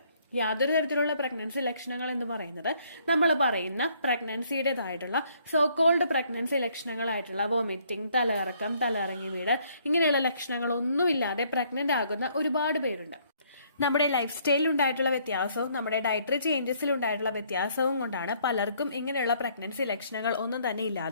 യാതൊരു തരത്തിലുള്ള പ്രഗ്നൻസി ലക്ഷണങ്ങൾ എന്ന് പറയുന്നത് നമ്മൾ പറയുന്ന പ്രഗ്നൻസിയുടേതായിട്ടുള്ള സോകോൾഡ് പ്രഗ്നൻസി ലക്ഷണങ്ങളായിട്ടുള്ള വോമിറ്റിംഗ്, തലകറക്കം, തലയിറങ്ങി വീട്, ഇങ്ങനെയുള്ള ലക്ഷണങ്ങളൊന്നുമില്ലാതെ പ്രഗ്നന്റ് ആകുന്ന ഒരുപാട് പേരുണ്ട്. നമ്മുടെ ലൈഫ് സ്റ്റൈലിൽ ഉണ്ടായിട്ടുള്ള വ്യത്യാസവും നമ്മുടെ ഡയറ്ററി ചേഞ്ചസിൽ ഉണ്ടായിട്ടുള്ള വ്യത്യാസവും കൊണ്ടാണ് പലർക്കും ഇങ്ങനെയുള്ള പ്രഗ്നൻസി ലക്ഷണങ്ങൾ ഒന്നും തന്നെ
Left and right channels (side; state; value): both; inverted; correlation -0.65